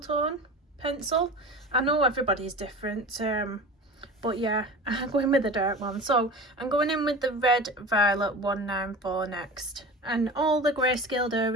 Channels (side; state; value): both; normal; correlation 0.33